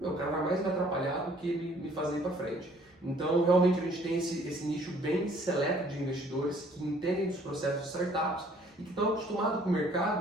o cara vai mais me atrapalhar do que me fazer ir para frente. Então, realmente, a gente tem esse nicho bem seleto de investidores que entendem dos processos de startups e que estão acostumados com o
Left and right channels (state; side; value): normal; both; correlation 0.59